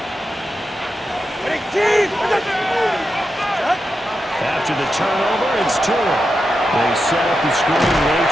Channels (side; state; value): both; normal; correlation 0.88